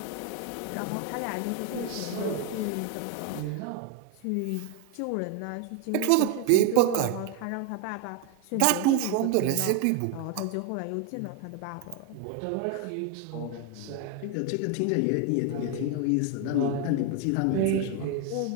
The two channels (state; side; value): different; both; correlation 0.01